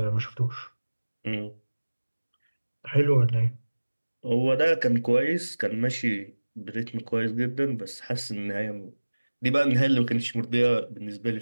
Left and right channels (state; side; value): inverted; both; correlation -1.00